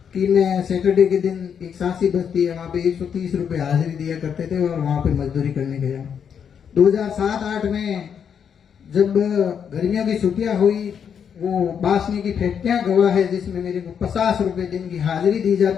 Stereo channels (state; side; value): quieter; right; 7.6 dB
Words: कि मैं सैटरडे के दिन एक सांसी बस्ती है, वहां पे 130 रुपए हाजिरी दिया करते थे और वहां पे मजदूरी करने गया। 2007-8 में जब गर्मियों की छुट्टियां हुई, वो बासनी की फैक्ट्रियां गवाह है जिसमें मेरे को 50 रुपए दिन की हाजिरी दी